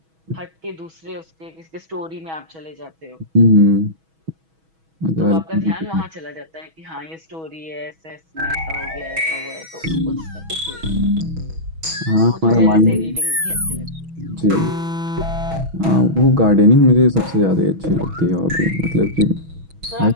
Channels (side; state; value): left; late; 6.2 ms